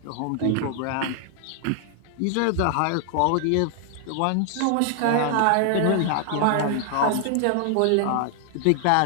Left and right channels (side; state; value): both; different; correlation 0.00